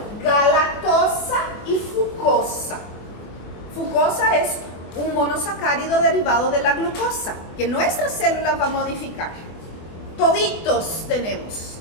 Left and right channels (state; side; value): late; right; 24 ms